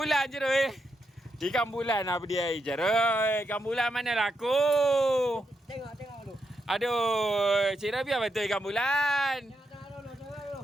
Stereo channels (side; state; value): both; normal; correlation 0.83